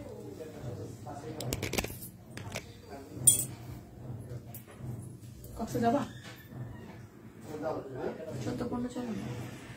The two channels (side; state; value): both; identical; correlation 1.00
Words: যাবা? 14-15 চলো না।